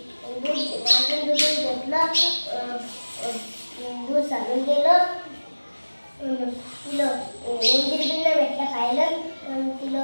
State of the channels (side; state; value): both; inverted; correlation -1.00